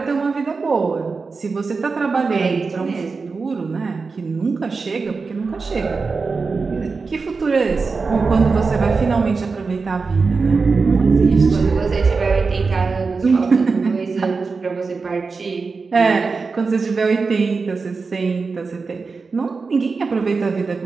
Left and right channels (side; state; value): left; quieter; 4.5 dB